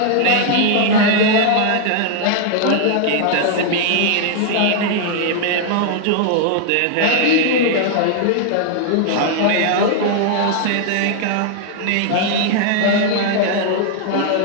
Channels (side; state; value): both; different; correlation 0.00